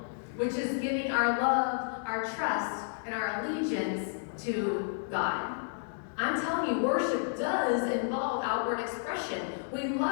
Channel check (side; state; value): right; silent; digital silence